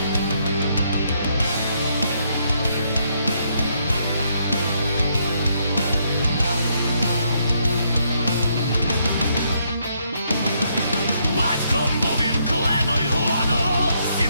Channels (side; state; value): both; inverted; correlation -0.74